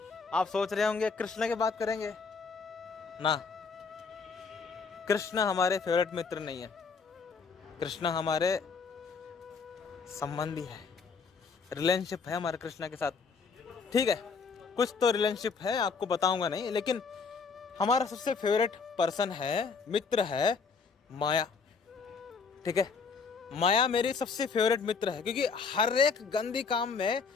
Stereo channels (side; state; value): right; quieter; 5.2 dB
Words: आप सोच रहे होंगे कृष्ण की बात करेंगे ना। कृष्ण हमारे फेवरेट मित्र नहीं है, कृष्ण हमारे संबंधी है, रिलेशनशिप है हमारे कृष्ण के साथ। ठीक है, कुछ तो रिलेशनशिप है, आपको बताऊंगा नहीं, लेकिन हमारा सबसे फेवरेट पर्सन है, मित्र है माया। ठीक है, माया मेरी सबसे फेवरेट मित्र है क्योंकि हर एक गंदी काम में